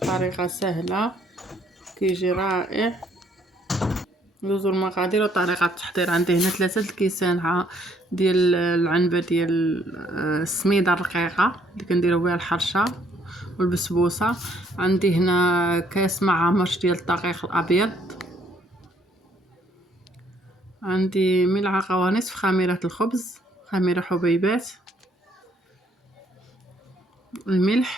الطريقة سهلة كيجي رائع. ندوزو المقادير وطريقة التحضير. عندي هنا 3 الكيسان ديال العنبة ديال السميدة الرقيقة اللي كنديرو بها الحرشة والبسبوسة. عندي هنا كاس مع مرش ديال الدقيق الابيض. عندي ملعقة ونصف خميرة الخبز، خميرة حبيبات.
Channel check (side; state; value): both; normal; correlation 0.66